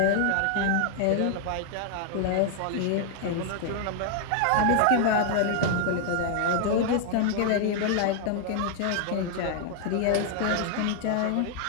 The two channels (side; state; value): both; different; correlation 0.00